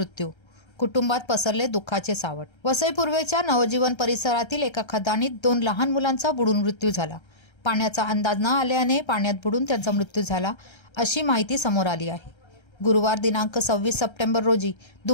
कुटुंबात पसरले दुःखाचे सावट. वसई पूर्वेच्या नवजीवन परिसरातील एका खदानीत 2 लहान मुलांचा बुडून मृत्यू झाला. पाण्याचा अंदाज न आल्याने पाण्यात बुडून त्यांचा मृत्यू झाला, अशी माहिती समोर आली आहे. गुरुवार दिनांक 26 सप्टेंबर रोजी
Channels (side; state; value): right; late; 1.3 ms